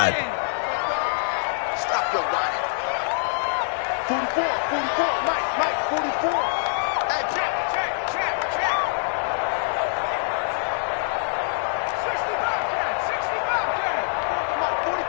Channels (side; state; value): right; silent; 61 dB below the other